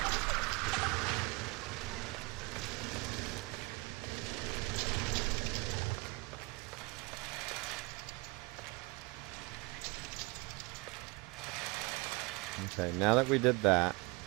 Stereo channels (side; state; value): left; quieter; 26.3 dB